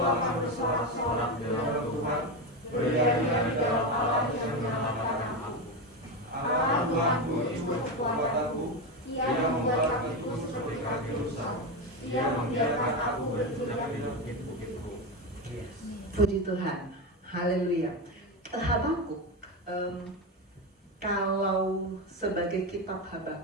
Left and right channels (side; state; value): both; normal; correlation 0.14